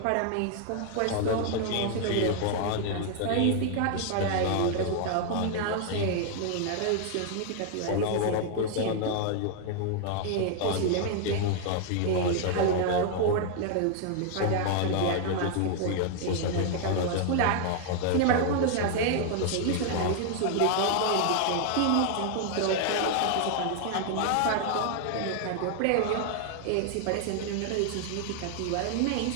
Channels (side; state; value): both; different; correlation 0.00